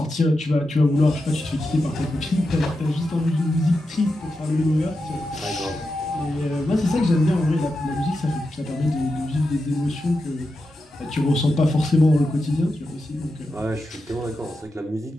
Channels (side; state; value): both; normal; correlation 0.89